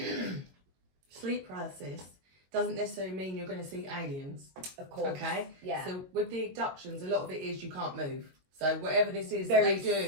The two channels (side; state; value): left; late; 22 ms